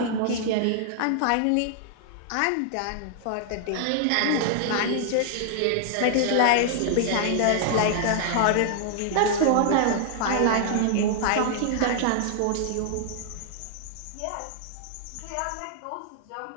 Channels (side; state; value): both; different; correlation -0.01